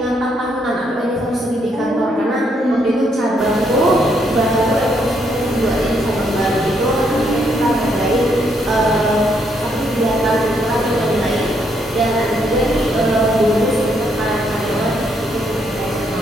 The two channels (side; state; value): both; normal; correlation 0.74